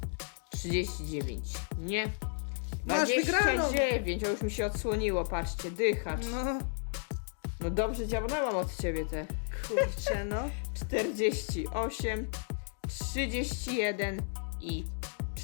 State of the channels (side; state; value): right; silent; 56 dB below the other